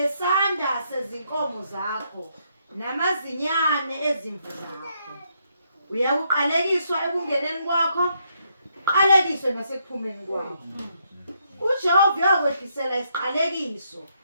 sezinkomo zakho, namazinyane ezimvu zakho. Uyakuqalekiswa ekungeneni kwakho, uqalekiswe nasekuphumeni kwakho. uJehova uyakwehlisela isiqalekiso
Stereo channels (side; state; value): both; inverted; correlation -0.76